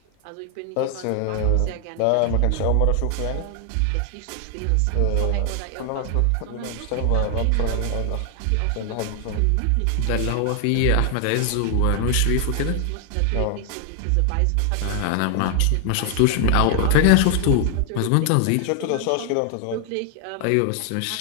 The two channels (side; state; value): both; different; correlation 0.00